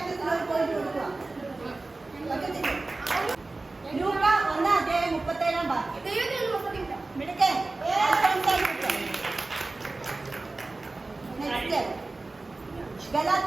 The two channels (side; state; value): left; quieter; 3.3 dB